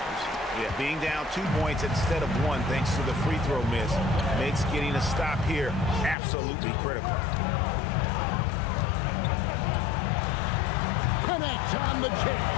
Yeah, being down 2 points instead of 1 thanks to the free throw miss makes getting a stop here absolutely critical. Connect on the jam.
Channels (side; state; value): right; drops out; at 6.2 s